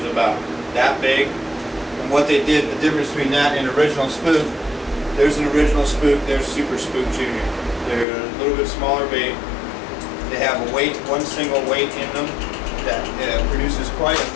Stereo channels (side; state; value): right; drops out; at 8.1 s